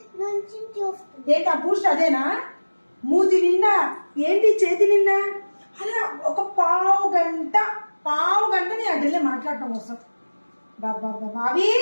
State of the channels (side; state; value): both; inverted; correlation -1.00